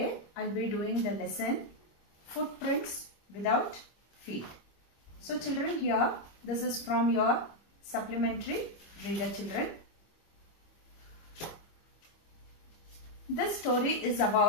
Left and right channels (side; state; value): right; late; 25 ms